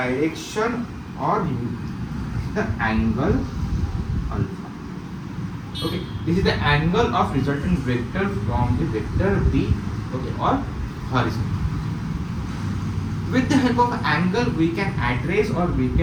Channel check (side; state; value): both; identical; correlation 1.00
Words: or the angle alpha. Okay, this is the angle of resultant vector from the vector B, okay, or horizon. With the help of angle, we can address or we